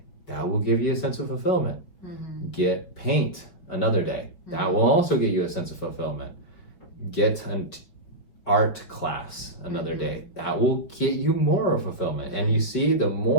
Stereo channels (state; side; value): late; right; 5.3 ms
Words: That will give you a sense of fulfillment. Get paint another day. That will also give you a sense of fulfillment. Get an art class another day. That will get you more of fulfillment. And you see, the